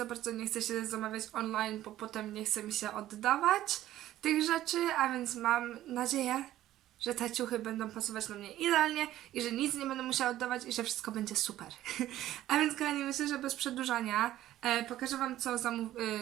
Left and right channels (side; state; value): left; quieter; 13.7 dB